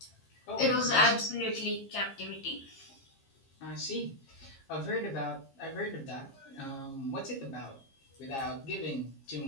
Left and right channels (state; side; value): late; right; 15 ms